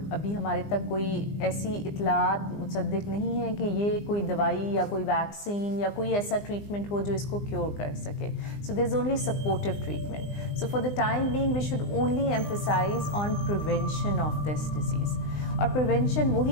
ابھی ہمارے تک کوئی ایسی اطلاعات مصدق نہیں ہے کہ یہ کوئی دوائی یا کوئی ویکسین یا کوئی ایسا ٹریٹمنٹ ہو جو اس کو کیور کر سکے. So there is only supportive treatment. So for the time being we should only emphasize on prevention of this disease. اور پریونشن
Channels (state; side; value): late; right; 20 ms